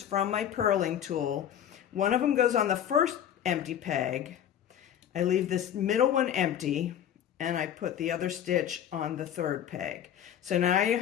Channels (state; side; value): quieter; right; 10.0 dB